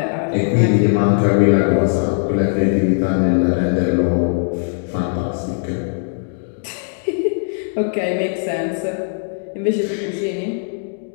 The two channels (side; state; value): right; silent; digital silence